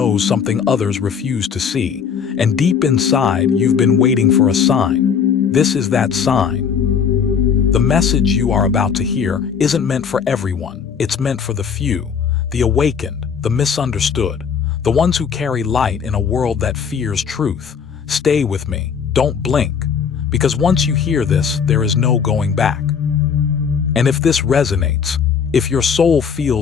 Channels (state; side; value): quieter; right; 6.8 dB